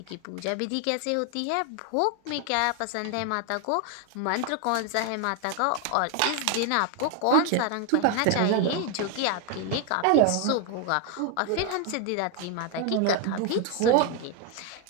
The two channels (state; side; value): different; both; correlation 0.01